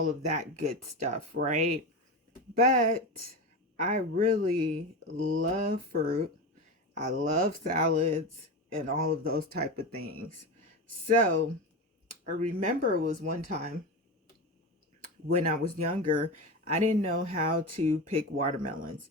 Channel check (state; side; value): normal; both; correlation 0.21